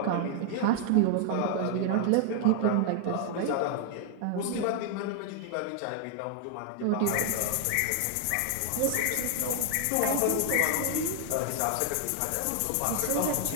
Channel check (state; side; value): different; both; correlation 0.00